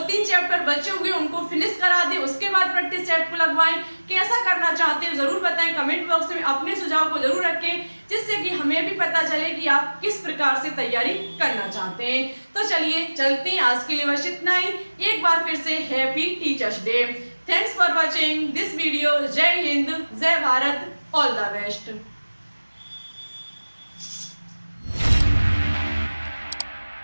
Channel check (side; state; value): both; inverted; correlation -1.00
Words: चैप्टर बचे हुए उनको फिनिश करा दें उसके बाद प्रैक्टिस सेट को लगवाएं। कैसा करना चाहते हैं जरूर बताएं, कमेंट बॉक्स में अपने सुझाव को जरूर रखें, जिससे कि हमें भी पता चले कि आप किस प्रकार से तैयारी करना चाहते हैं। तो चलिए चलते हैं, आज के लिए बस इतना ही। एक बार फिर से happy teachers day. Thanks for watching this video. जय हिंद, जय भारत, ऑल द बेस्ट।